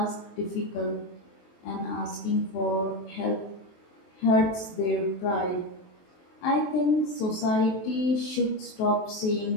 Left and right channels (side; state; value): right; late; 23 ms